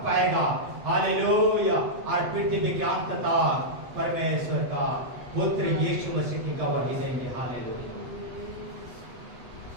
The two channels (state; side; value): late; left; 8.1 ms